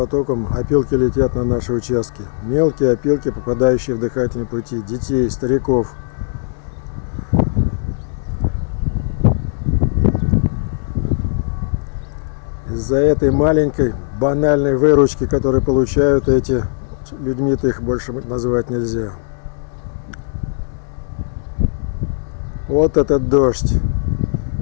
опилки летят на наши участки. Мелкие опилки, попадающие в дыхательные пути детей, стариков. Из-за этой маленькой банальной выручки, которую получают эти людьми-то, их больше называть нельзя. Вот этот дождь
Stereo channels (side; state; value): right; silent; digital silence